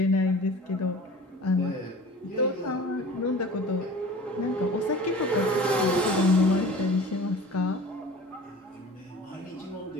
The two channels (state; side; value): normal; both; correlation 0.41